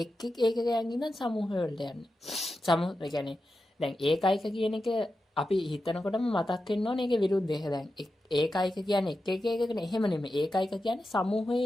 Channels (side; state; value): both; normal; correlation 0.90